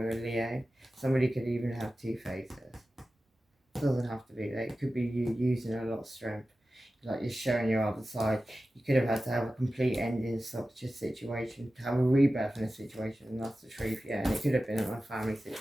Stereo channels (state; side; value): normal; both; correlation 0.94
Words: with a Leo. Somebody could even have two faces. It doesn't have to be that. It could be you using a lot of strength. Like, you're showing your other side. You could have had to have a complete ending in such a situation, to have a rebirth in a situation, and that's the truth, yeah. And it could have been a family